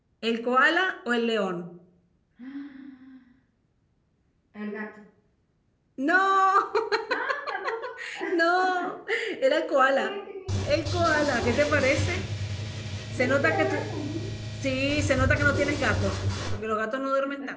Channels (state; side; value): identical; both; correlation 1.00